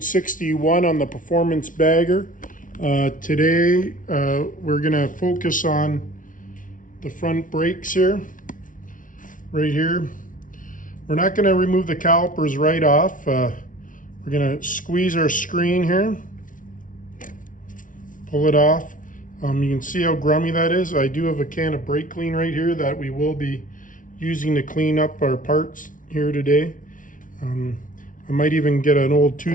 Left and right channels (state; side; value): late; right; 0.38 ms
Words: 61 on the Performance Bagger. Today we're going to focus on the front brakes here, right here. We're not going to remove the calipers right off. We're going to squeeze our screen here, pull it off. You can see how grummy that is. I do have a can of brake clean right here that we will be using to clean up our parts here today. I might even get an old